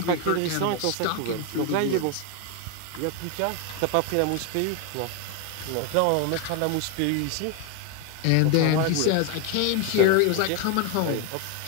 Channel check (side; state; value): both; different; correlation 0.01